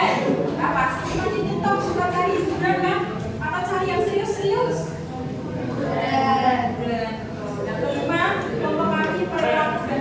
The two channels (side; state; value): both; identical; correlation 1.00